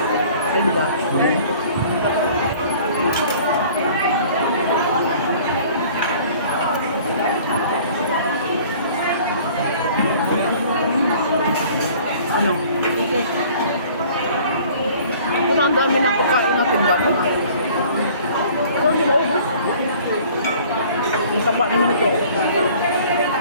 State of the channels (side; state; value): both; inverted; correlation -0.50